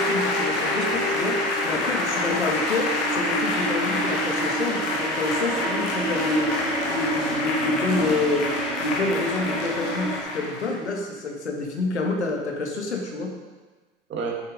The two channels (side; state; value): both; normal; correlation 0.35